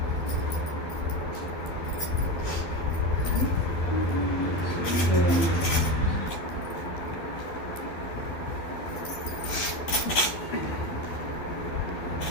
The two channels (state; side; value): late; right; 12 ms